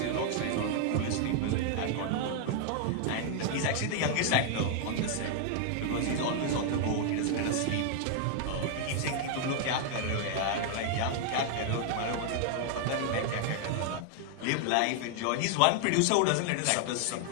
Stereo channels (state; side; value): different; both; correlation 0.00